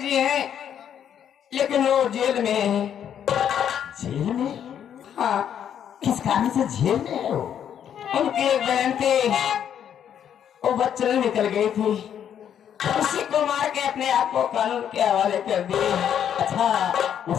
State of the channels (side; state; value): right; quieter; 9.2 dB